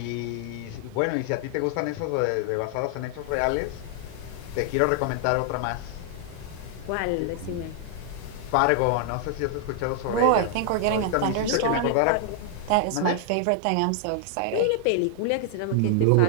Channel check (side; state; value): both; different; correlation 0.00